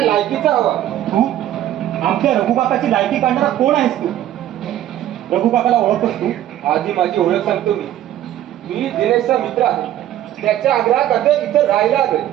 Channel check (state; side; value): quieter; left; 12.5 dB